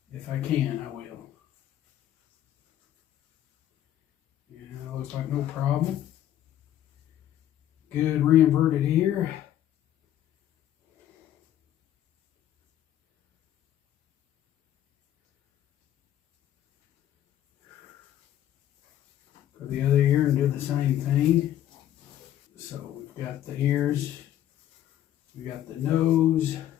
If I can, I will. Yeah, looks like no problem. Good re-inverted ear. Go the other ear and do the same thing. So we've got the ears, we got the nose,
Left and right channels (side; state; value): right; quieter; 11.9 dB